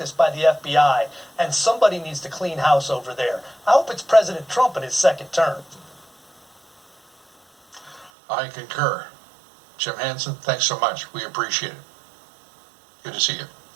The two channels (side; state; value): left; drops out; at 8.1 s